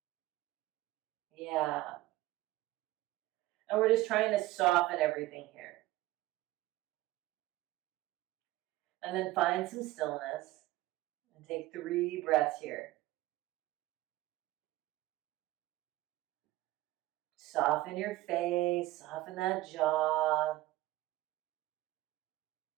Yeah. And we're just trying to soften everything here. And then find some stillness and take 3 breaths here. Soften your face, soften that jaw.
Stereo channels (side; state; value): left; quieter; 17.2 dB